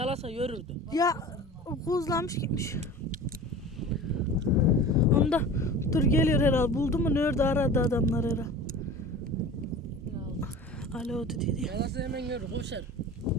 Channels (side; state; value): both; normal; correlation 0.38